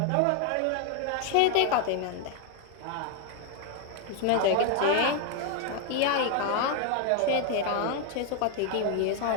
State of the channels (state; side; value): different; both; correlation 0.01